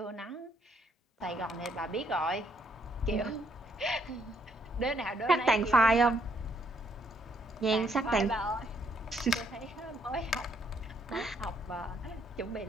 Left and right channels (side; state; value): both; normal; correlation 0.70